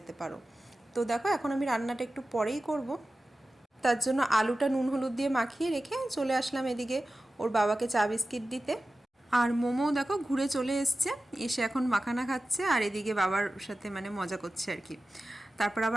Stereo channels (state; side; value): normal; both; correlation 0.95